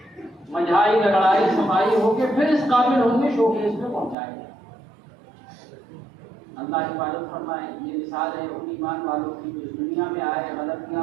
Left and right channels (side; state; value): left; drops out; at 4.2 s